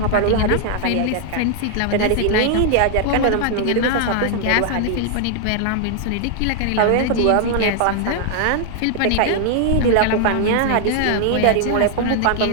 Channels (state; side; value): different; both; correlation 0.00